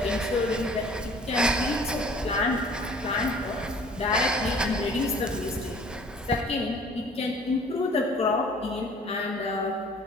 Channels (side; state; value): both; normal; correlation 0.51